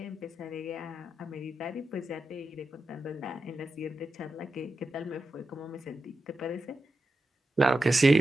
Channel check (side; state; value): both; normal; correlation 0.90